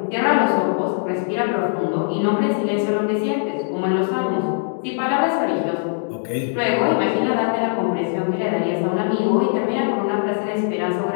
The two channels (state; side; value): silent; right; digital silence